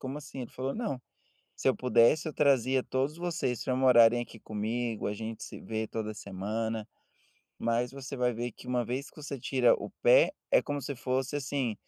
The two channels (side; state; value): both; identical; correlation 1.00